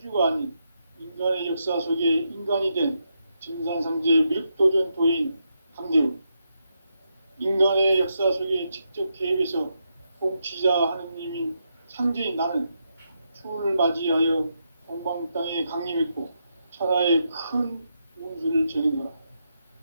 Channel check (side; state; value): both; inverted; correlation -0.82